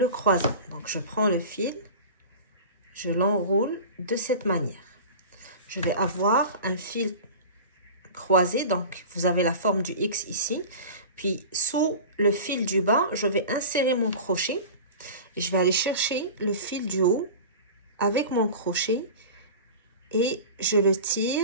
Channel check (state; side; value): inverted; both; correlation -0.35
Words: croisant. Donc, je prends le fil. Je l'enroule de cette manière. Je vais avoir un fil croisé. Donc, vous avez la forme du X ici. Puis, sous le fil du bas, je vais insérer mon crochet. Et je vais aller chercher le fil du haut avec mon crochet. Et je le